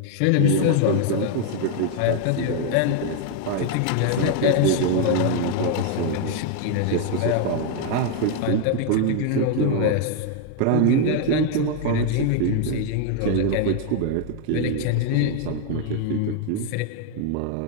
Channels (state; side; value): different; both; correlation 0.00